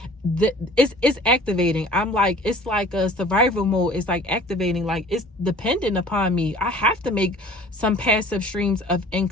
it's activating. I'm like, it's like a survival mode. It's like activating, like it's dependent upon me. I have to make some passive streams of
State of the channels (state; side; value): normal; both; correlation 0.47